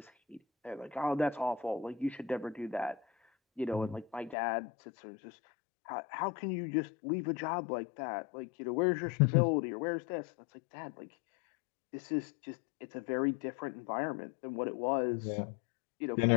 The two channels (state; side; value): drops out; right; at 4.4 s